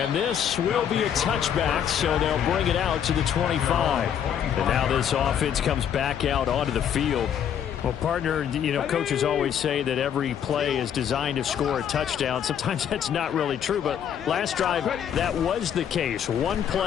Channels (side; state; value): right; quieter; 8.9 dB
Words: this will be a touchback, so they'll bring it out to the 25. And now this offense comes back out onto the field. Well, partner, you know, coaches always say that every play is designed to score a touchdown. Sometimes that's not really true, but last drive, that was the case. One